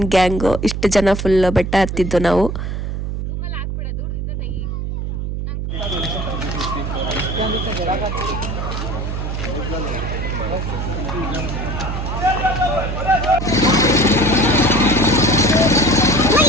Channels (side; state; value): right; noise; hum, 3 dB below the sound